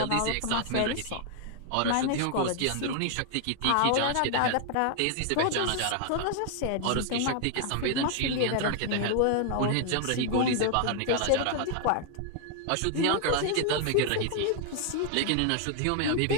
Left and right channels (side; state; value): both; different; correlation 0.00